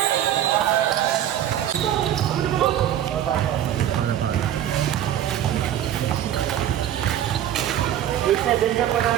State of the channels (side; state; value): left; quieter; 11.0 dB